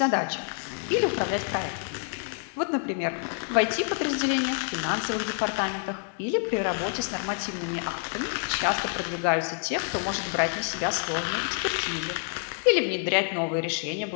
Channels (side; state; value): right; silent; 59 dB below the other